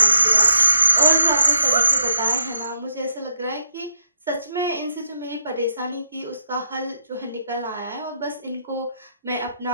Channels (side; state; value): both; inverted; correlation -0.79